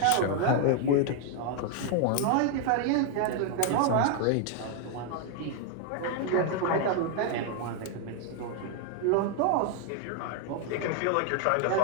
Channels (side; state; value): both; different; correlation 0.00